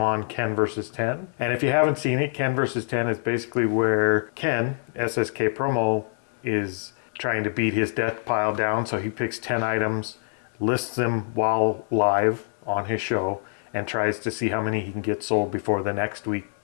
on Ken versus 10. And if you haven't seen it, Ken versus 10 is basically where Ken, SSK Promo, is trying to beat his death pile down. So he picks 10 items, lists them while live on his show, and tries to see how many he can get sold before the next week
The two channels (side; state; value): right; silent; digital silence